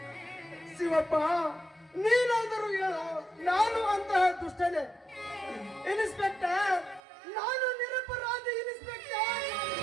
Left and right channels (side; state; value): left; drops out; at 7.0 s